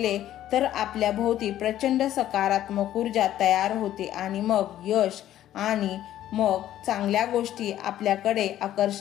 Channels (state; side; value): quieter; right; 12.5 dB